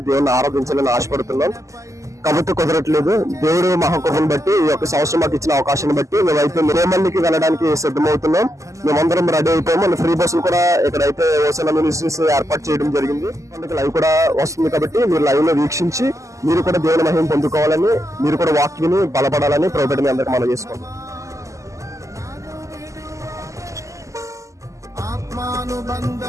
దేవుని ఆరాధించాలని ఆశపడుతున్నాం. కాబట్టి కుదరట్లేదు. దేవుడు మహాకృపను బట్టి ఈ యొక్క సంవత్సరం మాకు ఇచ్చిన అవకాశాన్ని బట్టి మేమైతే లేమల్లికి వెళ్ళడానికి సిద్ధమవుతున్నాం. మేమందరం రెడీ అయిపోయాము. మన ఫ్రీ బస్సులు కూడా ఇక్కడైతే హోసన్న మినిస్ట్రీస్ ఏర్పాటు చేయడం జరిగింది. అందుకే లైవ్ కూడా వస్తుంది కాబట్టి మీరు లైవ్ లో వీక్షించి మీరు కూడా దేవుని మహిమ పొందుకోవాలని, మీరు కూడా వాక్యని బలపడాలని ప్రభుత్వం మీ అందరికి మనం చేసుకోండి.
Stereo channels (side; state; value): left; late; 0.16 ms